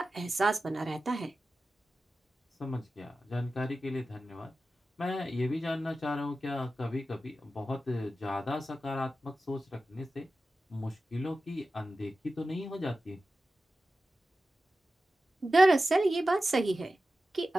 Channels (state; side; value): normal; both; correlation 0.94